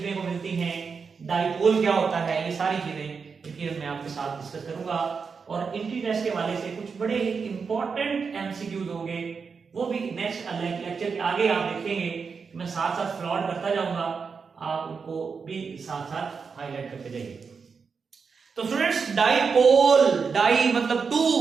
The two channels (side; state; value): left; quieter; 5.5 dB